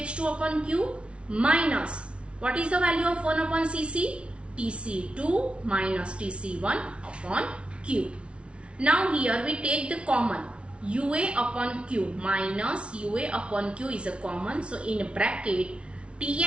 upon Q minus, what is the value of 1 upon CC? TC2 minus TC1 upon Q. Now here we take the common, UA upon Q minus UA upon Q is a common. So in bracket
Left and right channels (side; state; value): left; late; 0.059 ms